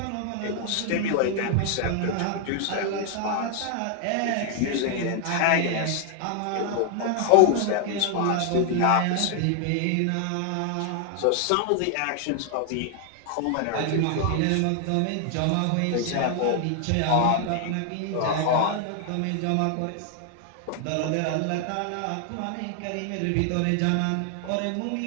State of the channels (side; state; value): both; different; correlation 0.00